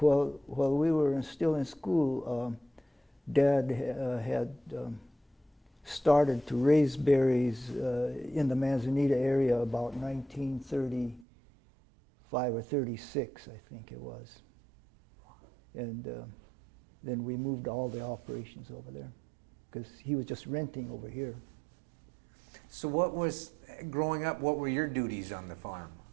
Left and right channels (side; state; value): left; drops out; at 11.2 s